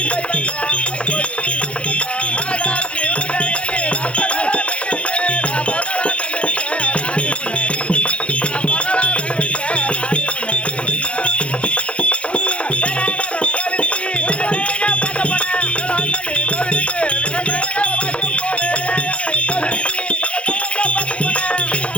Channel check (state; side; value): late; right; 0.060 ms